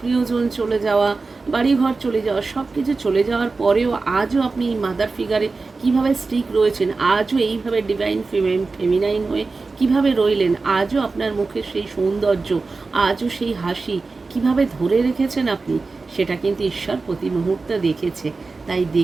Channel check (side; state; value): left; quieter; 3.9 dB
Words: চলে যাওয়া, বাড়িঘর চলে যাওয়া, সব কিছু চলে যাওয়ার পরেও আজও আপনি এই মাদার ফিগারে কীভাবে স্টিক রয়েছেন, আজও এইভাবে ডিভাইন ফেমিনাইন হয়ে কিভাবে রইলেন, আজও আপনার মুখে সেই সৌন্দর্য, আজও সেই হাসি কিভাবে ধরে রেখেছেন আপনি, সেটা কিন্তু ঈশ্বর প্রতি মুহূর্তে দেখেছে। তাই